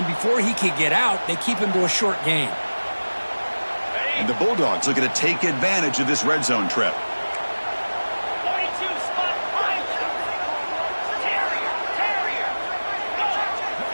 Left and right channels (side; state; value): both; inverted; correlation -1.00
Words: before he could get out, they keep him to a short gain. And the Bulldogs looking to take advantage of this red zone trip. 42, spot 5. Terrier.